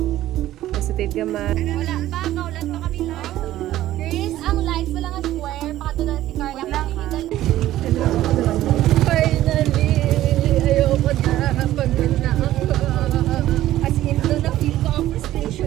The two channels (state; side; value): quieter; left; 14.1 dB